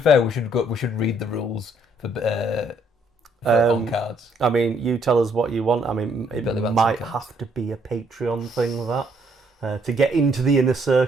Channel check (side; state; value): both; normal; correlation 0.68